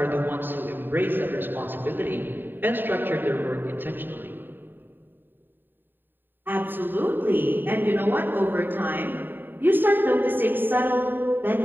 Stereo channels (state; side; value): late; left; 0.094 ms